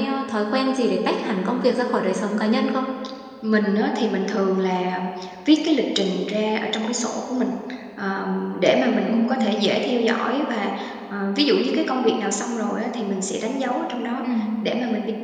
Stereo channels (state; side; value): identical; both; correlation 1.00